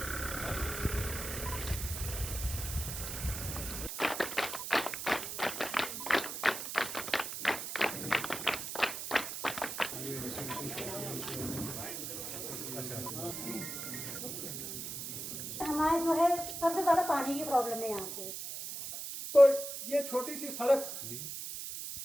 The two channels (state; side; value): noise; right; hiss, 6 dB below the sound